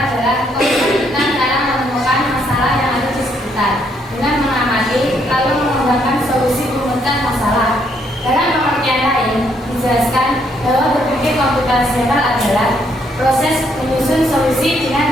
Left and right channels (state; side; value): normal; both; correlation 0.71